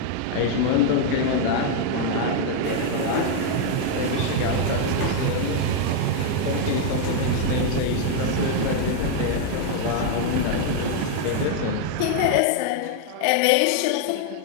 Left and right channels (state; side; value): different; both; correlation 0.00